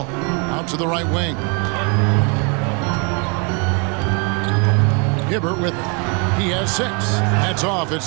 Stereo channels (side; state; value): left; quieter; 34.2 dB